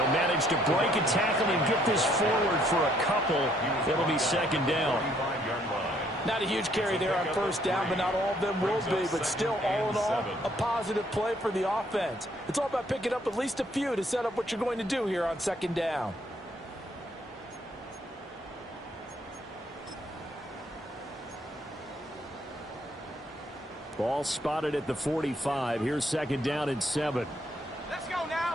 manage to break a tackle and get this forward for a couple. It'll be second down. Not a huge carry there on first down, but not all of them will be. But still, all in all, a positive play for the offense. It's all about picking up at least a few to set up what you're going to do here on second down. Ball spotted at the 45. Here's second down and 7. Let's go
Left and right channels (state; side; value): normal; both; correlation 0.67